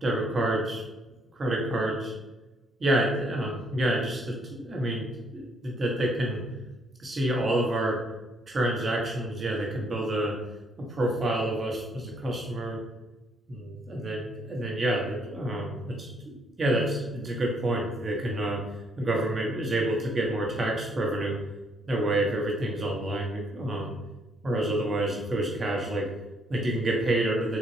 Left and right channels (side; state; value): both; normal; correlation 0.69